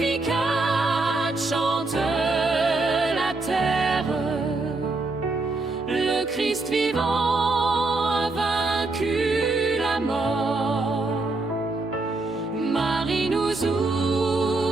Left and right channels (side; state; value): left; quieter; 3.3 dB